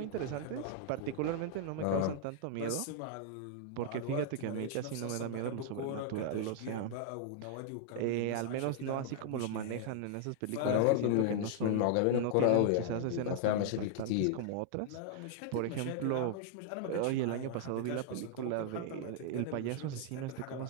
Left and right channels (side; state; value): both; different; correlation -0.01